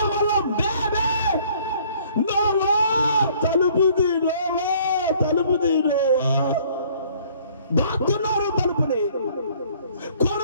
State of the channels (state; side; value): inverted; both; correlation -0.58